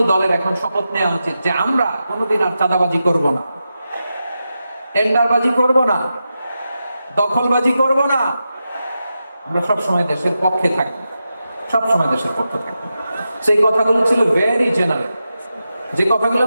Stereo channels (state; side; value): inverted; both; correlation -0.89